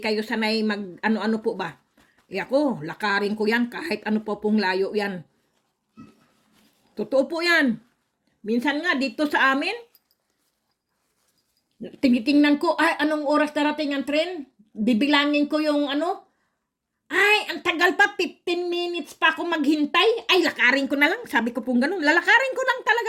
sanay mag ano-ano po ba. Ako, lakarin ko yan kahit ano po pong layo yan. Totoo po yan. Minsan nga dito sa amin, tinitingnan ko, anong oras darating ang tren? Bibilangin ko yung ang tagal pa, 15 minutes pa ako maghintay. Ay, lakarin ko na lang. Sabi ko pong ganun, lalakarin ko lang talaga,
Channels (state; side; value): identical; both; correlation 1.00